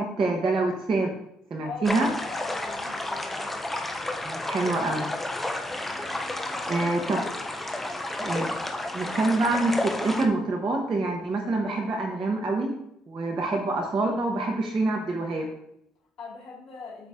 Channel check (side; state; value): both; normal; correlation 0.79